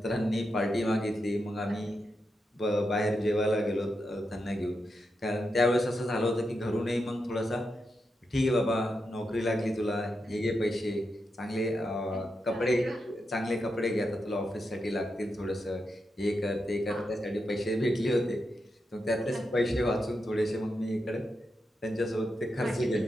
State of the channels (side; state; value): both; normal; correlation 0.86